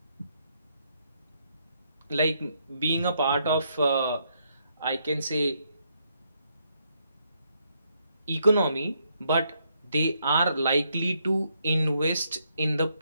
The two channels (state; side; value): inverted; both; correlation -0.75